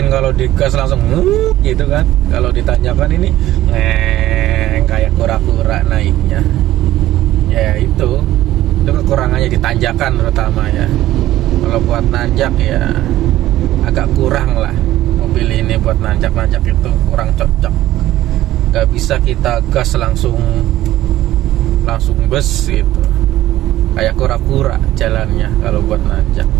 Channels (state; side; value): quieter; left; 14.6 dB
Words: kalau digas langsung gitu kan, kalau ditanjakan ini kayak kura-kura naiknya. Ya itu kekurangannya di tanjakan terutama ya. Kalau buat nanjak ya agak kurang lah, mobil ini buat nanjak itu kurang cocok. Gak bisa kita gas langsung bus gitu, kayak kura-kura jalannya kalau buat nanjak.